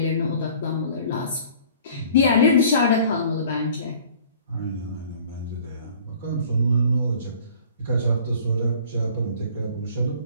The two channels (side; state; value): both; inverted; correlation -0.50